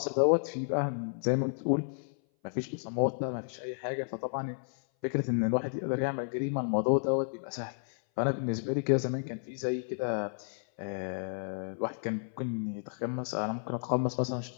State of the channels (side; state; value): right; silent; 56 dB below the other